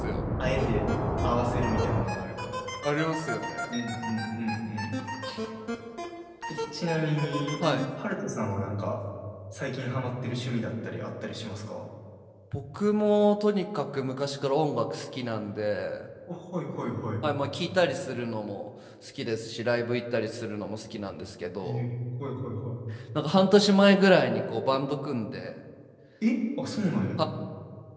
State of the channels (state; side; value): identical; both; correlation 1.00